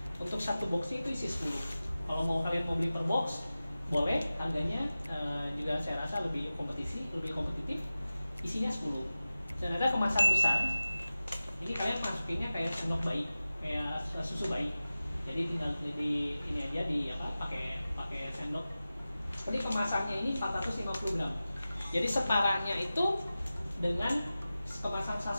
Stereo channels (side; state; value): both; inverted; correlation -0.96